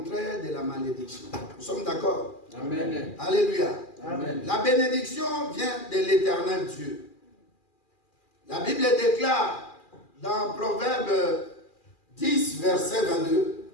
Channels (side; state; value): right; late; 2.4 ms